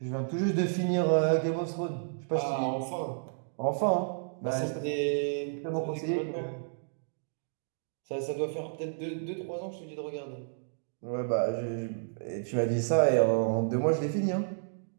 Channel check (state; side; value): silent; left; digital silence